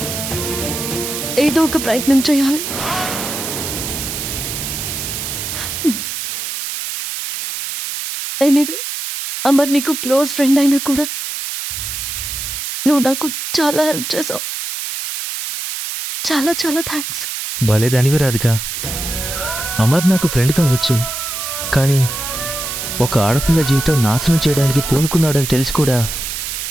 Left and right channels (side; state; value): right; noise; hiss, 5 dB below the sound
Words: ఏదో ఒక ప్రయత్నం చేయాలి. ఎనీవే, అమర్ నీకు క్లోజ్ ఫ్రెండ్ అయినా కూడా నువ్వు నాకు చాలా హెల్ప్ చేసావు. చాలా చాలా థ్యాంక్స్. భలేదానివి రాధిక. అమర్ నాకు ఫ్రెండ్ కావచ్చు, కానీ ఒక ఆడపిల్ల జీవితం నాశనం చేయడానికి పూనుకున్నాడని తెలిసి కూడా